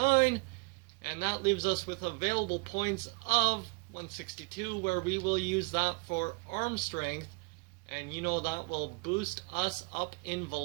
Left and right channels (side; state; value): left; quieter; 30.7 dB